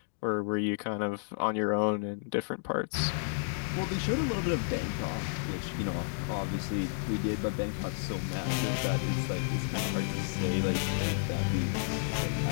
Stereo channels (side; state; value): right; silent; digital silence